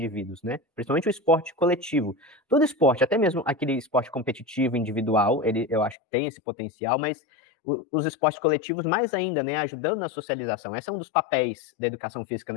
né? Principalmente o esporte coletivo. Todo esporte, até mesmo aquele esporte competitivo, individual, eu acho que tem esse potencial, mas os esportes coletivos mais ainda, né? Ajudando na socialização. Esse é um dos papéis da educação física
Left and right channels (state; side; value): drops out; right; at 6.0 s